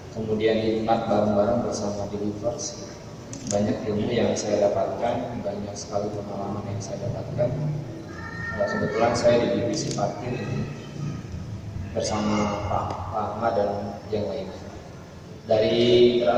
Kemudian nikmat bareng-bareng bersama di Gibas. Banyak ilmu yang saya dapatkan, banyak sekali pengalaman yang saya dapatkan. Kebetulan saya di divisi parkir bersama Pak Ahmad dan yang lainnya. Dari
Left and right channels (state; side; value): identical; both; correlation 1.00